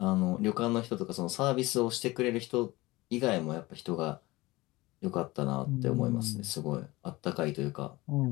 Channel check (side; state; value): right; quieter; 20.6 dB